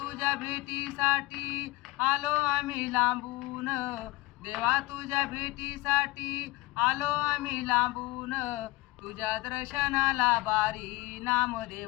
भेटीसाठी आलो आम्ही लांबून, देवा तुझ्या भेटीसाठी आलो आम्ही लांबून. तुझ्या दर्शनाला वारी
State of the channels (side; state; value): right; quieter; 19.9 dB